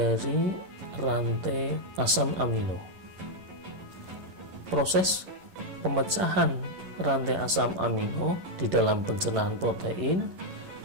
rantai asam amino. Proses pemecahan rantai asam amino di dalam pencernaan protein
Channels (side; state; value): left; late; 11 ms